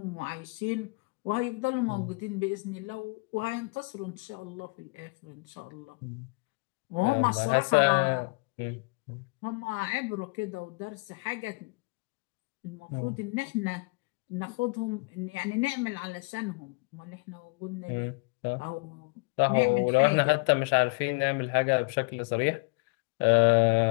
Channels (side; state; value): right; quieter; 29.6 dB